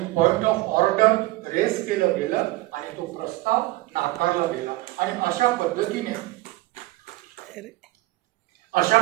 पॉइंट ऑफ ऑर्डर रेस केलं गेलं आणि तो प्रस्ताव नाकारला गेला. आणि अशा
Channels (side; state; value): left; quieter; 19.1 dB